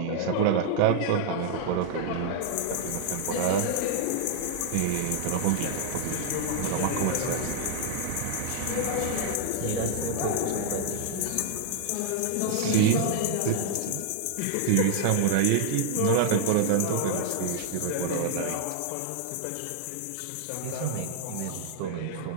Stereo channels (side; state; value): both; different; correlation -0.01